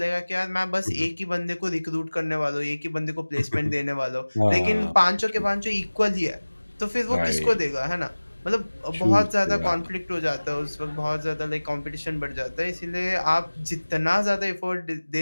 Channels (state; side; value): inverted; both; correlation -1.00